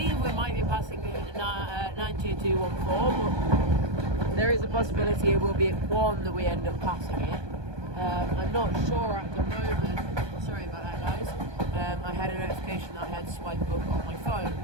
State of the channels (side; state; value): left; late; 1.2 ms